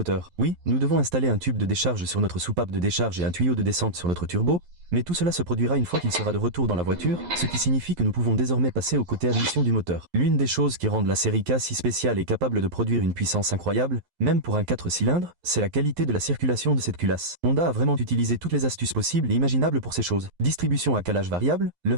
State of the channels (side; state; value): left; late; 11 ms